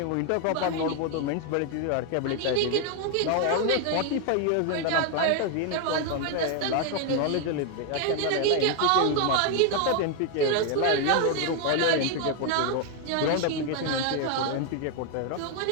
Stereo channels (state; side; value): different; both; correlation 0.01